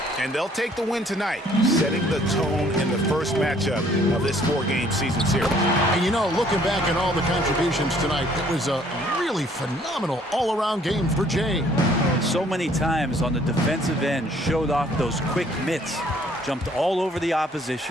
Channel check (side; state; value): both; normal; correlation 0.60